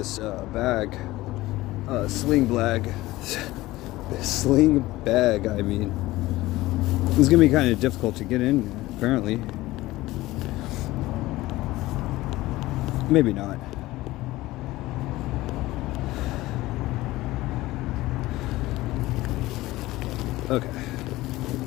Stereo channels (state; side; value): quieter; right; 18.0 dB